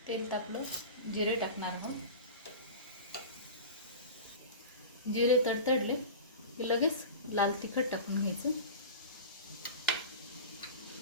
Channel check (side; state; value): both; inverted; correlation -0.32